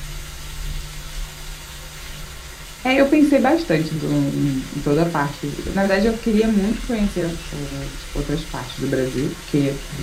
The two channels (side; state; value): both; identical; correlation 1.00